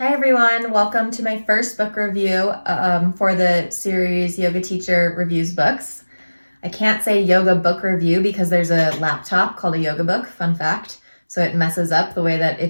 Hi everyone, welcome to my first book review for the series Yoga Teacher Reviews Books. I can't say yoga book review because there's a laptop called a yoga book, fun fact, so it messes up the way that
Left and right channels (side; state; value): both; inverted; correlation -1.00